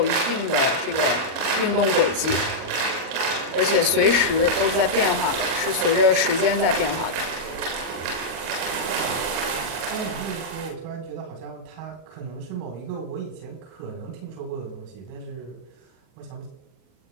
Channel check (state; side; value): late; left; 37 ms